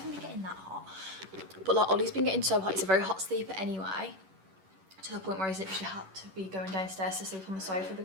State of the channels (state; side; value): late; left; 11 ms